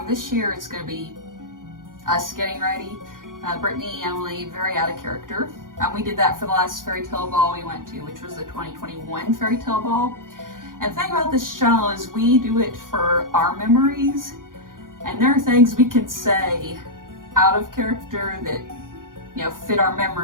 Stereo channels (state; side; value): late; left; 0.90 ms